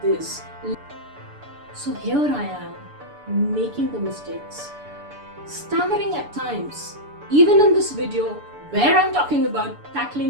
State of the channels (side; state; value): left; late; 6.9 ms